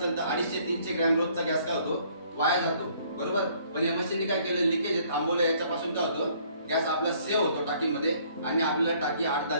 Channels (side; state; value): both; inverted; correlation -0.61